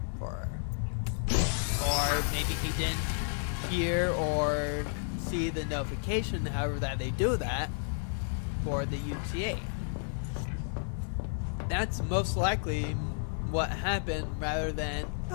for her. Or maybe he didn't hear or see the notification, however that they do that, for the UTA. That's most likely what happened, rather than,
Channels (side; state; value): right; silent; 57 dB below the other